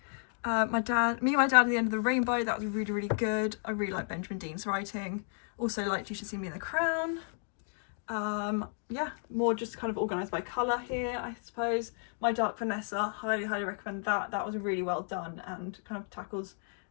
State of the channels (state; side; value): silent; right; 56 dB below the other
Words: and My Dad at the End of the Rainbow, that was really, really good. I really like Benjamin Dean's writing. Also liked You Should See Me in the Crown. Yeah, more just kind of organised by colour here, I suppose. My Dark Vanessa, highly recommend that. That was really well done and kind of tackles